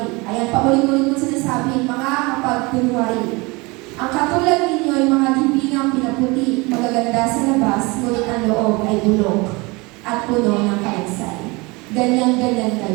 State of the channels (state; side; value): quieter; left; 25.5 dB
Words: Ayan, paulit-ulit mo sinasabi, mga mapagkunwari. Ang katulad ninyo ay mga libingang pinaputi, magaganda sa labas, ngunit ang loob ay bulok at puno ng kalansay. Ganyan-ganyan